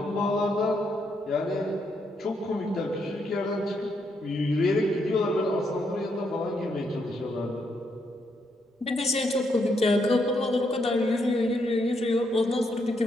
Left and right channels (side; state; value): both; normal; correlation 0.77